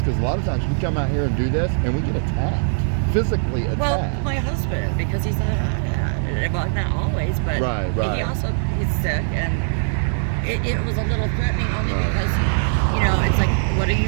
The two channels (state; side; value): silent; left; digital silence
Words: because a lot of times we come out here and do this, and we get attacked, physically attacked. Well, my husband, because he's a hothead. Well, not always, but Right. he's sick, and it was a little threatening only because, it's like, what are